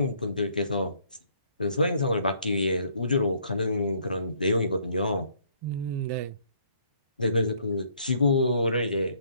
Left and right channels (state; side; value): inverted; both; correlation -0.65